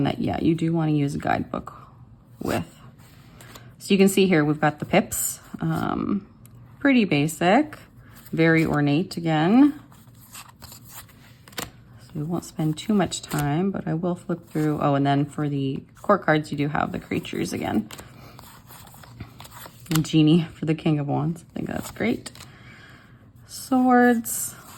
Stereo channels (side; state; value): both; identical; correlation 1.00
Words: that, yeah, you do want to use a guidebook with. So you can see here, we've got the pips, pretty basic, very ornate again. So we won't spend too much time, but I will flip through. Oh, and then for the court cards, you do have the creatures again. And genie for the King of Wands. I think that's great. Swords,